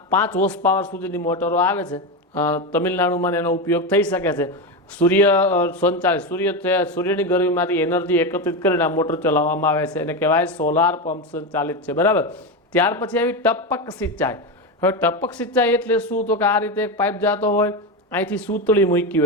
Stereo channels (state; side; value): normal; both; correlation 0.15